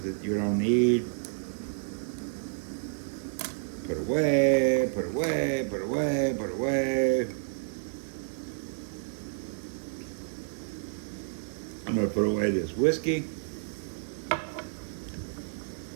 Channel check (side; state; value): left; silent; digital silence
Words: that you don't need. Put away, put away, put away, put away. I'm gonna put away this whiskey.